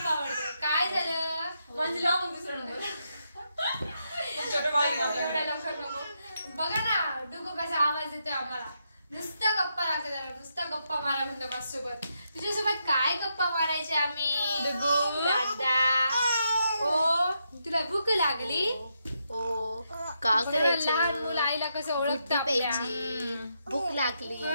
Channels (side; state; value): both; inverted; correlation -0.81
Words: आवडतं. काय झालं म्हणजे लावून दुसरं नंबर छोटं बाळ एवढ्या लवकर नको. बघा ना डुगू कसा आवाज येतोय आम्हाला. नुसता गप्पा लागतो त्याला, नुसता गप्पा मारा म्हणतो माझ्यासोबत. तुझ्यासोबत काय गप्पा मारायचे आम्ही दादा? ओ तुला भूक लागली? ओ का करायचं? लहान मुलं आईला कसं ओळखतं भूक लागली,